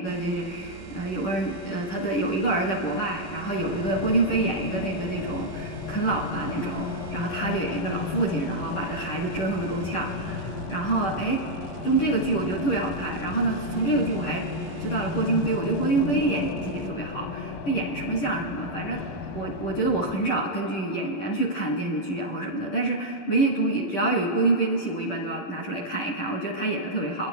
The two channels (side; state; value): right; late; 10 ms